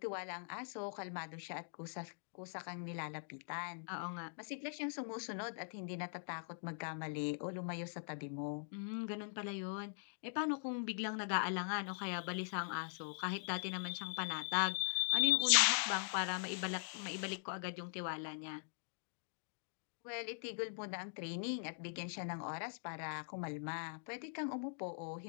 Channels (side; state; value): right; silent; digital silence